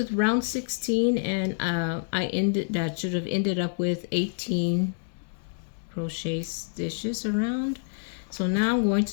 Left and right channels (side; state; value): right; silent; digital silence